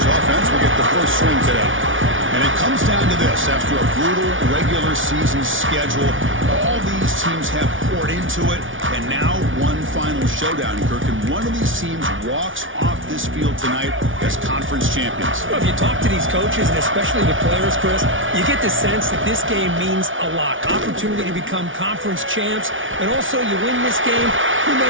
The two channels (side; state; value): left; late; 0.57 ms